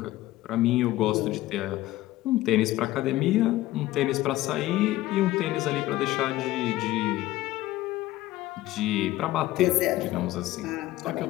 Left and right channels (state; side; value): quieter; right; 16.2 dB